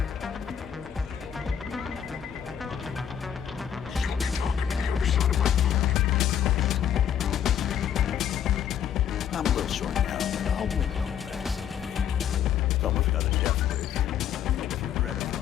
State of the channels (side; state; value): right; quieter; 9.1 dB